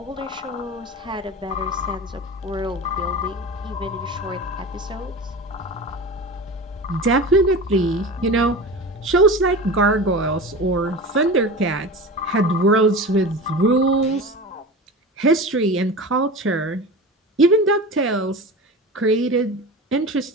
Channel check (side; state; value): both; normal; correlation 0.31